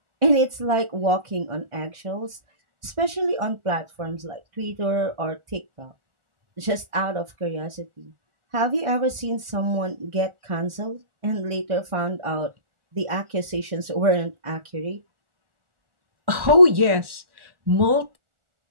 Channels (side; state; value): left; late; 1.4 ms